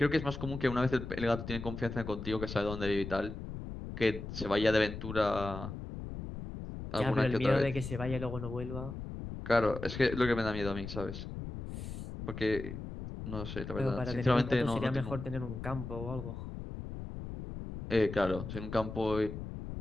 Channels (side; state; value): left; noise; rumble, 8 dB below the sound